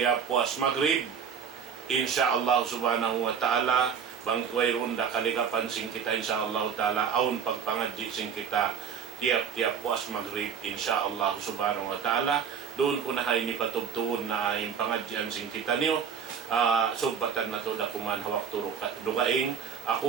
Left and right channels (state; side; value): quieter; left; 6.9 dB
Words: puas maghrib insyaallah subhanahu wa ta'ala bang wayron da kaligapan sing kita insyaallah ta'ala aun pagpangadji sing kita tiap-tiap puas maghrib insyaallah subhanahu wa ta'ala. Doon ko na hay ni patubtuon na yung pangadyan sing kita niyo. Subbatan na to dakuman hawak turo dugaing.